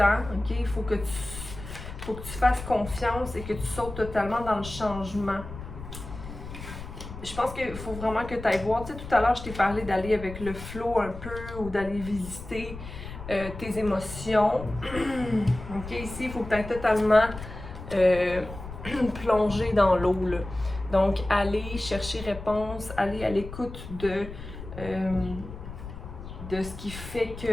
ok? Il faut que tu fasses confiance et que tu sautes totalement dans le changement. Je pense qu'il faut vraiment que tu ailles voir. Tu sais, tout à l'heure, je t'ai parlé d'aller avec le flow un peu ou d'aller visiter tes émotions. Ok, ici, il faut que tu ailles totalement plonger dans l'eau. Donc, aller chercher réponse, aller à l'écoute de ce qui fait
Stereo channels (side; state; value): left; noise; rumble, 11 dB below the sound